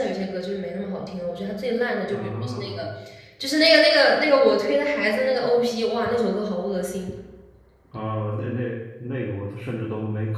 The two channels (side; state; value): both; identical; correlation 1.00